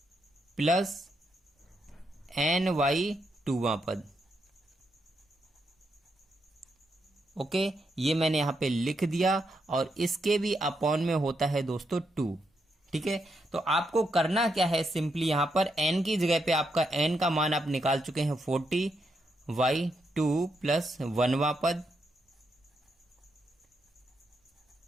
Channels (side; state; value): both; normal; correlation 0.81